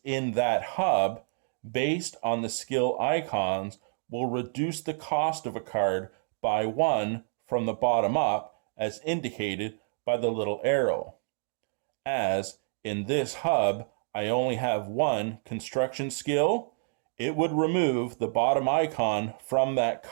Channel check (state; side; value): silent; left; digital silence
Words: in that hub based on the skill icons will reduce the cost of a card by 1 from the bottom up, as indicated by the little arrow. As in this hub, I only have 1 construction skill, it would remove the bottom icon from that